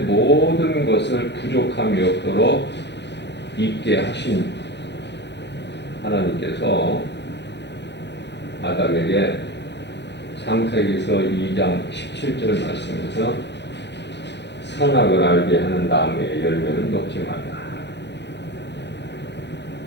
것을 부족함이 없도록 있게 하신 하나님께서 아담에게 창세기서 2장 17절 말씀에서 선악을 알게 하는 나무의 열매는 먹지 말라.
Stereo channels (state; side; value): late; right; 0.50 ms